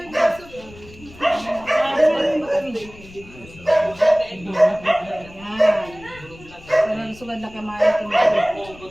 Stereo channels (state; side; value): noise; left; rumble, 20 dB below the sound